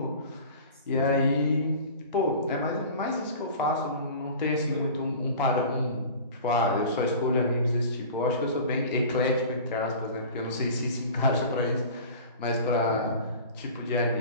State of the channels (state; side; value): inverted; both; correlation -0.39